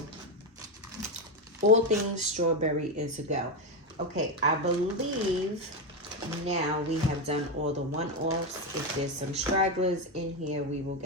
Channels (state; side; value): normal; both; correlation 0.09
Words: all things strawberry is a go. Okay, I believe now we have done all the one-offs. If there's some stragglers in here, we will